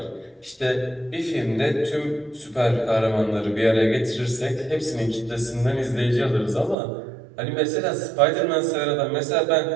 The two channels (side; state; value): left; drops out; at 6.8 s